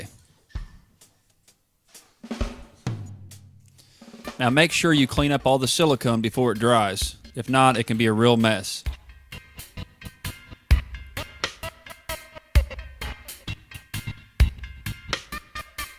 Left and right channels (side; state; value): both; identical; correlation 1.00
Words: Now make sure you clean up all the silicone before it dries. If not, it can be a real mess.